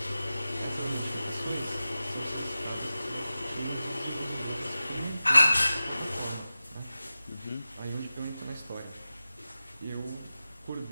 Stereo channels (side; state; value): both; inverted; correlation -0.94